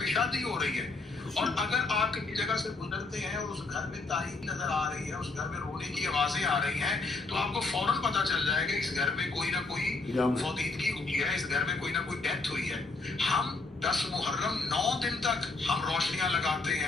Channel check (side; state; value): right; quieter; 3.6 dB